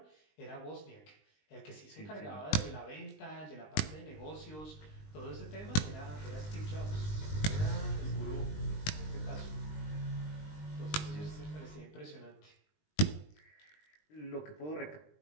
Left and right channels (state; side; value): late; right; 20 ms